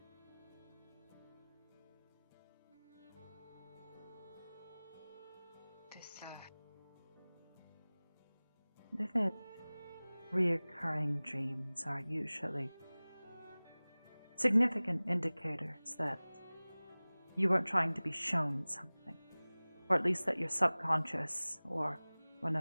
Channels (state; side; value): inverted; both; correlation -0.99